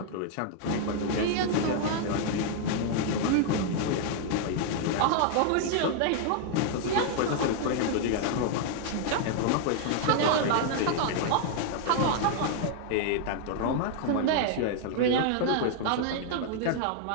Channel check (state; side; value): different; both; correlation 0.00